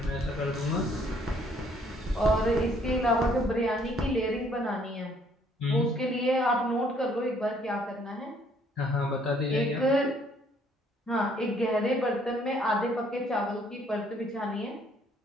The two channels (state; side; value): normal; both; correlation 0.64